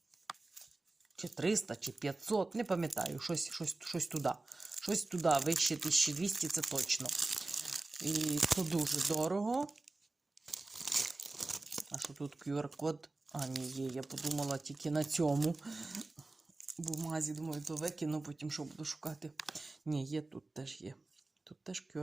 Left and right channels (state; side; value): quieter; left; 3.2 dB